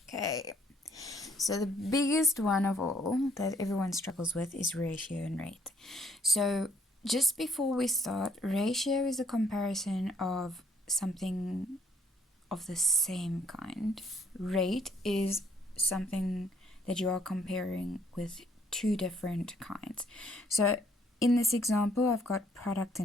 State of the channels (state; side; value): normal; both; correlation 0.66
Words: Okay, so the biggest one of all that everyone struggles with is ratio and rate. So just before we start, ratio is a comparison of something of the same kind. Rate is something that you are comparing with two different kinds. So in this example, I've got product